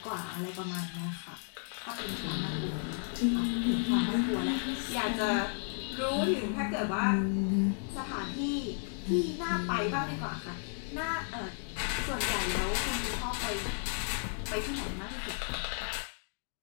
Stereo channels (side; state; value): right; silent; 55 dB below the other